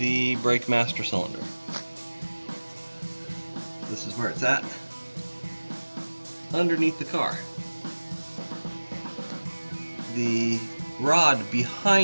brake master cylinder. This is where it's at, underneath the car. The rod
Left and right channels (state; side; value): inverted; both; correlation -1.00